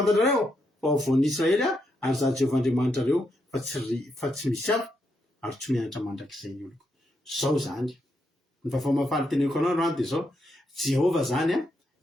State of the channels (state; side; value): normal; both; correlation 0.80